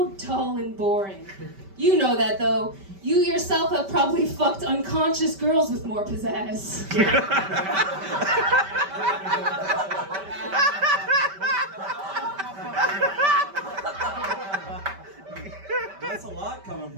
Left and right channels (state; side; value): late; left; 5.1 ms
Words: dull and boring. You know that, though. You yourself have probably fucked unconscious girls with more pizzazz. That's a lot coming